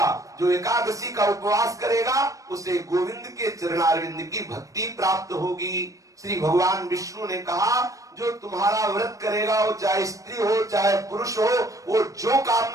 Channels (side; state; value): left; late; 0.16 ms